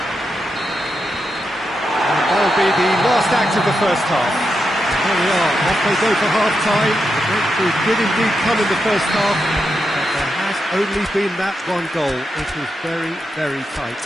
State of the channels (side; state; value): both; normal; correlation 0.86